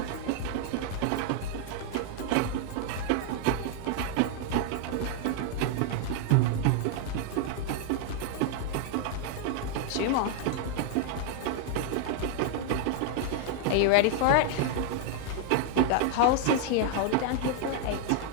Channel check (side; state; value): both; different; correlation 0.00